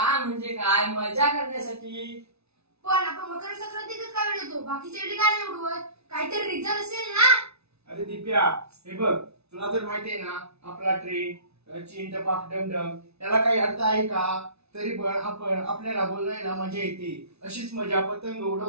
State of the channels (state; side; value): late; left; 0.80 ms